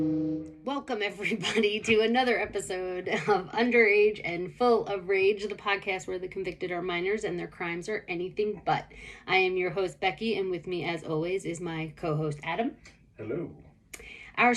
Welcome, everybody, to another episode of Underage and Full of Rage, the podcast where the convicted are minors and their crimes are anything but. I am your host, Becky, and with me, as always, is my co-host, Adam. Hello. Our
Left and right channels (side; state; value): both; identical; correlation 1.00